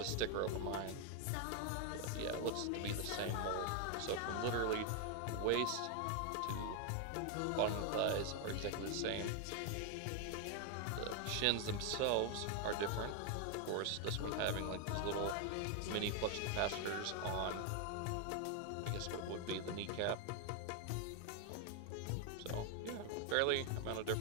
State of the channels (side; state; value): both; different; correlation 0.00